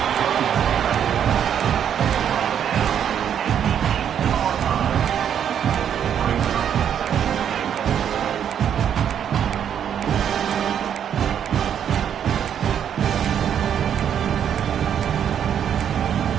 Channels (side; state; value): left; quieter; 8.9 dB